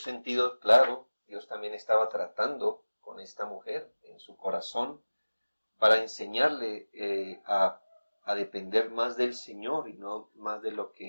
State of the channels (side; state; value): both; inverted; correlation -1.00